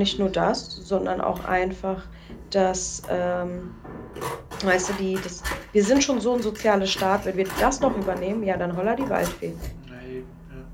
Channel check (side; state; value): both; identical; correlation 1.00